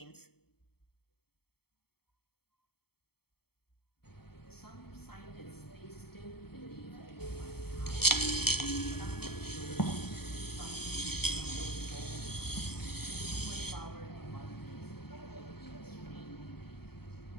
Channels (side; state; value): right; late; 0.96 ms